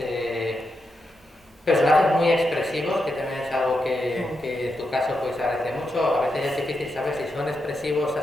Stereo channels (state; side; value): normal; both; correlation 0.85